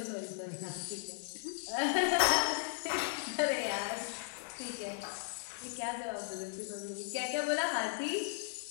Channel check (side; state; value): right; silent; digital silence